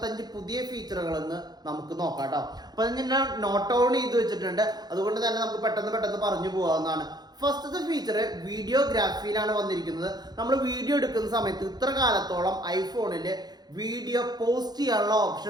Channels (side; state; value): left; late; 0.19 ms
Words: പുതിയ ഫീച്ചറുകളെന്ന് നമുക്ക് നോക്കാം കേട്ടോ. അപ്പൊ ഞാൻ നോട്ട് ഡൗൺ ചെയ്ത് വെച്ചിട്ടുണ്ട്, അതുകൊണ്ട് തന്നെ നമുക്ക് പെട്ടെന്ന് പറഞ്ഞു പോകാവുന്നതാണ്. ഫസ്റ്റത്തെ ഫീച്ചർ വീഡിയോഗ്രാഫിയിലാണ് വന്നിരിക്കുന്നത്. നമ്മൾ വീഡിയോ എടുക്കുന്ന സമയത്ത് ഇത്ര കാലത്തോളം ഐഫോണിൽ വീഡിയോ പോസ്റ്റ് ചെയ്യാനുള്ള ഓപ്ഷൻ